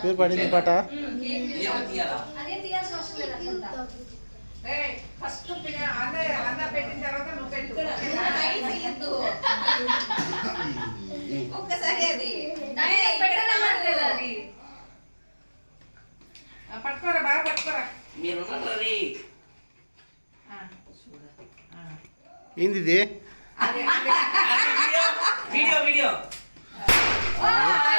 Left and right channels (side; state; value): both; inverted; correlation -1.00